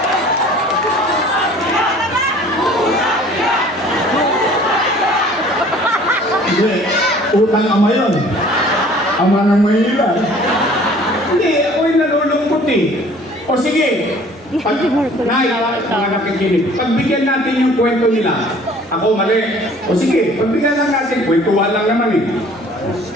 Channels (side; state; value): both; normal; correlation 0.51